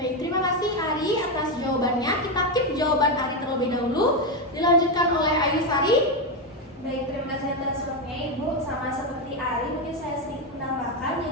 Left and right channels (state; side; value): normal; both; correlation 0.09